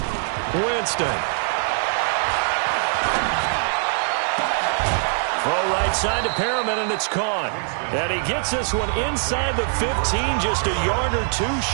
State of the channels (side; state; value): left; silent; digital silence